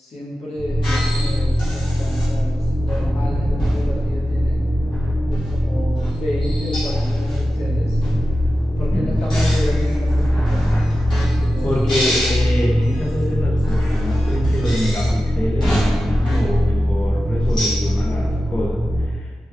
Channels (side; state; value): both; normal; correlation 0.93